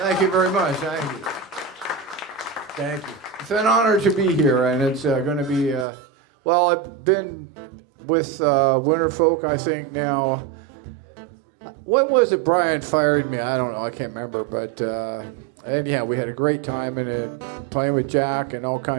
you very much. Thank you. Thank you. It's an honor to be here, and it's going to be, well, I've been with Winterfolk, I think, now. What was it Brian fired me? I don't know. I can't remember. But, and yeah, we had a great time in it, playing with Jack and all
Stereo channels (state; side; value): drops out; left; at 5.9 s